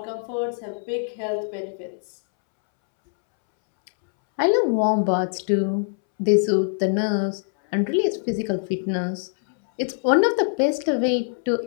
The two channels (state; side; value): silent; right; 63 dB below the other